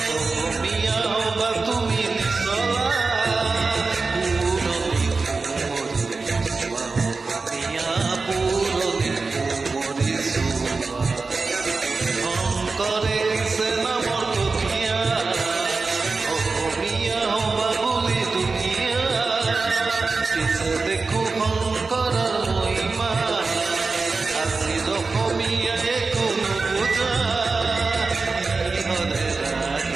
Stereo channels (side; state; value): left; quieter; 4.1 dB